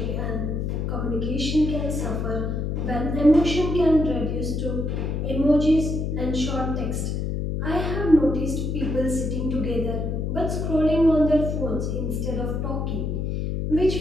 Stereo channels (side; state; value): left; noise; hum, 1 dB below the sound